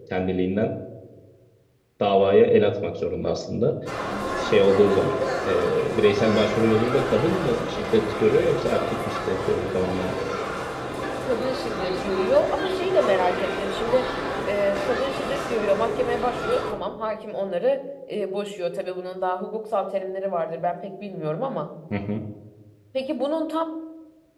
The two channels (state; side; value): identical; both; correlation 1.00